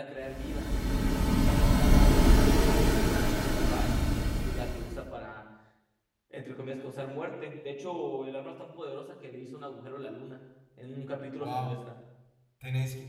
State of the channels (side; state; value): both; identical; correlation 1.00